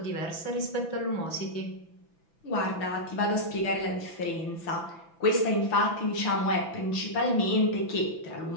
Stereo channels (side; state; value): right; late; 6.0 ms